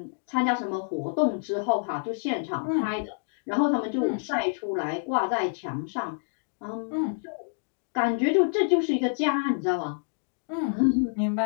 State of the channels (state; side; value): silent; right; digital silence